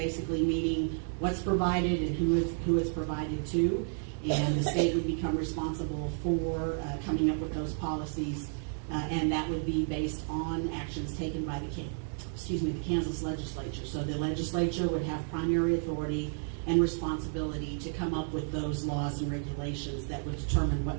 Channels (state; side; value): silent; left; 57 dB below the other